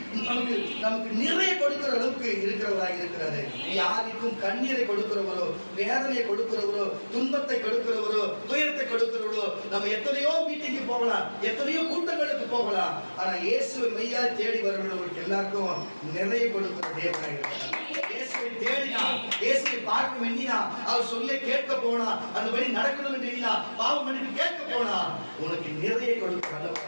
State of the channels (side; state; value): both; inverted; correlation -1.00